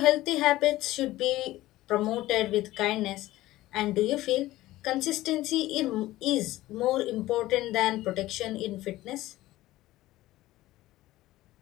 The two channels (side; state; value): right; quieter; 16.5 dB